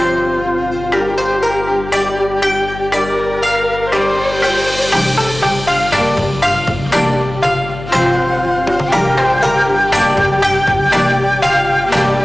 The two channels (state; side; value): noise; left; hum, 12 dB below the sound